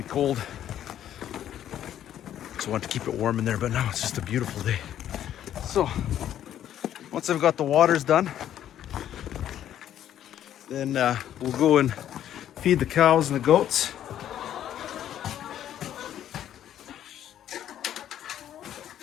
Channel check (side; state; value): right; quieter; 11.0 dB